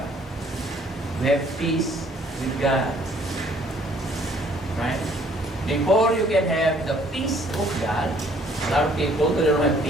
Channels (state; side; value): normal; both; correlation 0.61